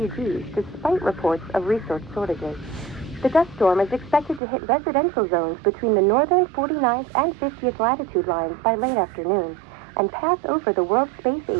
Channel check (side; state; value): left; drops out; at 4.4 s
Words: despite reports of resource shortages. The dust storm is expected to hit residential zones between the northern 49th and 50th latitude lines by late afternoon and pass over the World Space